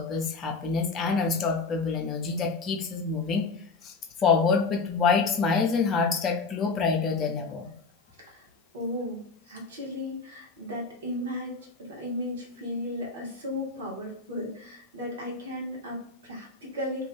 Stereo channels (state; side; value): quieter; right; 4.2 dB